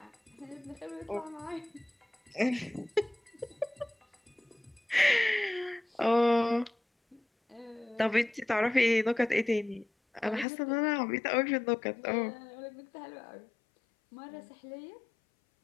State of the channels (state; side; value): drops out; right; at 10.5 s